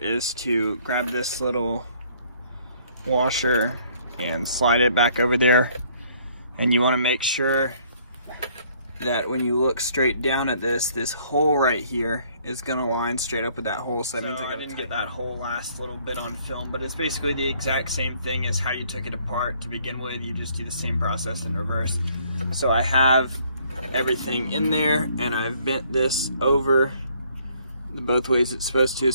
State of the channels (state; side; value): inverted; both; correlation -0.63